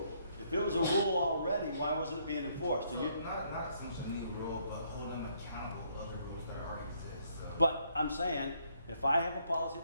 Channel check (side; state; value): both; inverted; correlation -0.70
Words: If it was a rule already, why wasn't it being enforced? So not so much a new rule, but holding them accountable to other rules that already exist. So. But I'm saying, if I have a policy